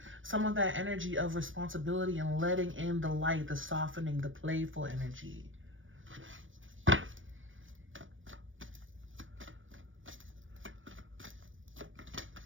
some of that energy of responsibility and letting in the light, the softening, the playful energy.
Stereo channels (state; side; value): late; left; 0.57 ms